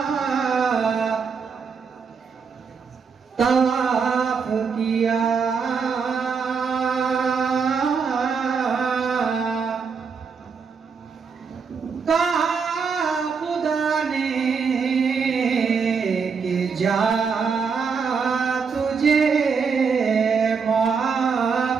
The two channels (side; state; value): left; quieter; 5.7 dB